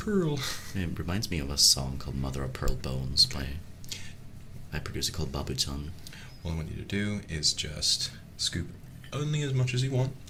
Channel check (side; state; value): both; identical; correlation 1.00